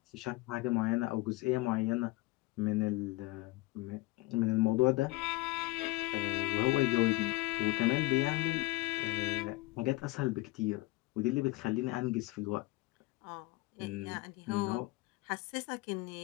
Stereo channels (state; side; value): quieter; right; 20.8 dB